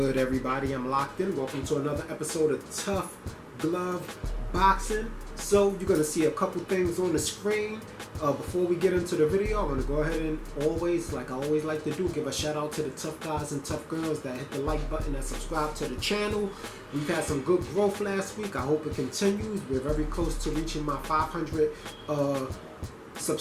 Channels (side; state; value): both; identical; correlation 1.00